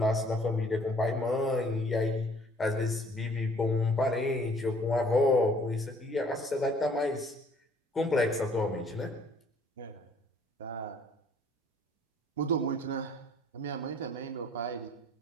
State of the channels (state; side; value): normal; both; correlation 0.58